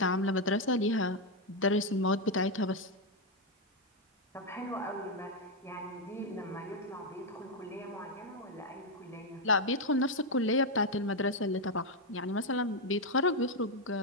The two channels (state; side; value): normal; both; correlation 0.03